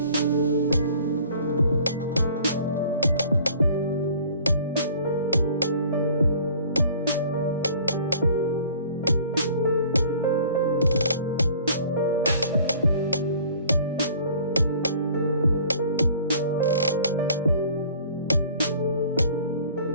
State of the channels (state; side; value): inverted; both; correlation -0.51